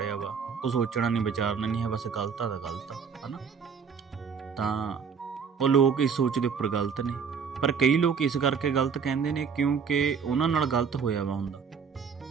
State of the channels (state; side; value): quieter; left; 6.3 dB